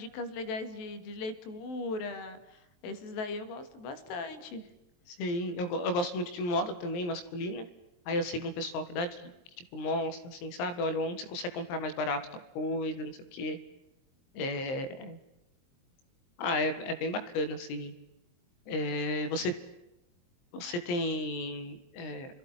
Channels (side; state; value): right; late; 23 ms